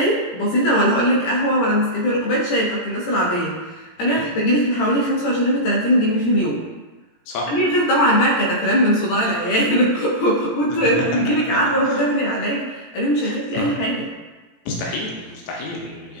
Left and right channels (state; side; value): late; right; 17 ms